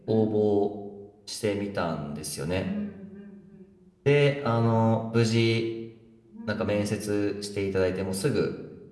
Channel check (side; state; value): both; identical; correlation 1.00